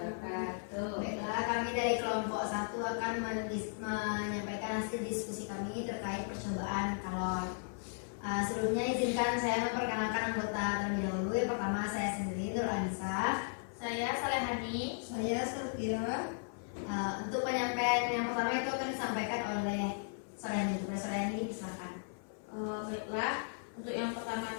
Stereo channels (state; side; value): silent; right; 54 dB below the other